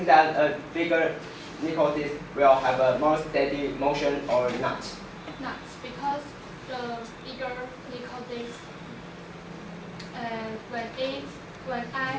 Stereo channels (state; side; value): identical; both; correlation 1.00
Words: a bigger nickel disc will have a more steady motion or not? Not, because the bigger nickel disc, when